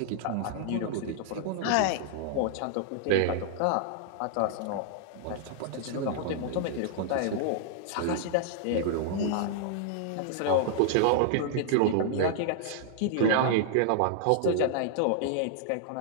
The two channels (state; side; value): different; both; correlation -0.01